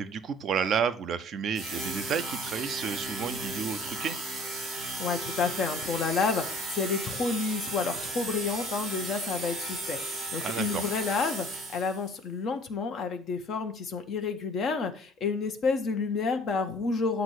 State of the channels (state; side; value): normal; both; correlation 0.50